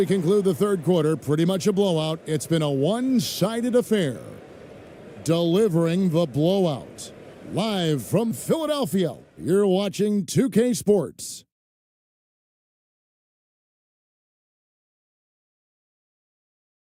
conclude the third quarter, pretty much a blowout. It's been a one-sided affair. Delivering the blowout. Live from Philadelphia, you're watching 2K Sports.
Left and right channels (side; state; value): both; identical; correlation 1.00